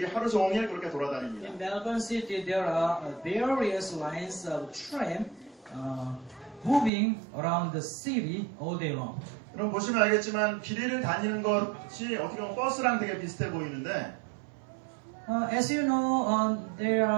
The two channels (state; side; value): drops out; left; at 6.9 s